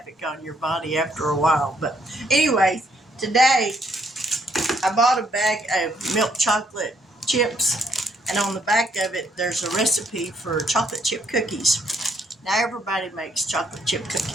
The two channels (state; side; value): normal; both; correlation 0.70